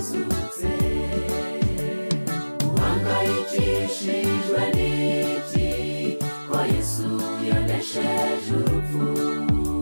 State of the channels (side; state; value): both; inverted; correlation -1.00